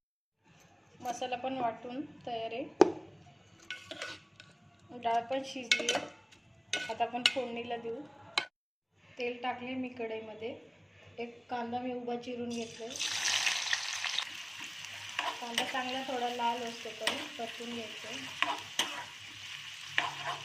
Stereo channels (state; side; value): identical; both; correlation 1.00